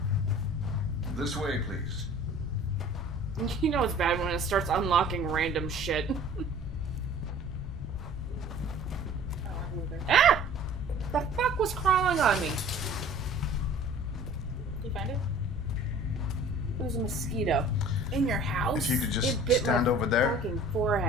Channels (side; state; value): both; normal; correlation 0.47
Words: This way, please. You know it's bad when it starts unlocking random shit. Ah! The fuck was crawling on me? Did you find it? It was a mosquito. In your house? If you could just It bit stand my over there. fucking